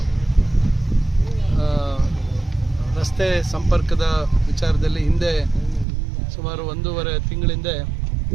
ರಸ್ತೆ ಸಂಪರ್ಕದ ವಿಚಾರದಲ್ಲಿ ಹಿಂದೆ ಸುಮಾರು ಒಂದೂವರೆ ತಿಂಗಳಿಂದ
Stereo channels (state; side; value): drops out; left; at 5.9 s